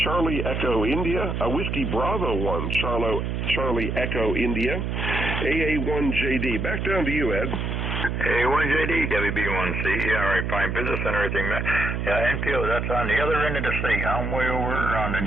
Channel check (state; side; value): noise; right; hum, 2 dB below the sound